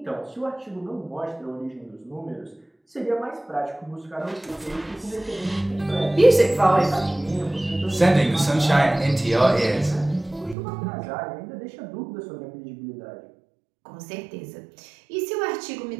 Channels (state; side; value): drops out; left; at 10.6 s